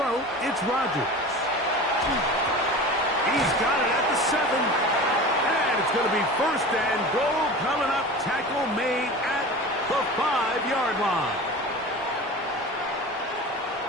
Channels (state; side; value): normal; both; correlation 0.34